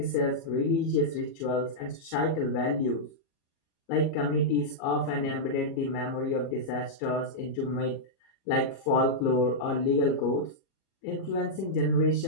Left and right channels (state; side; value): late; right; 37 ms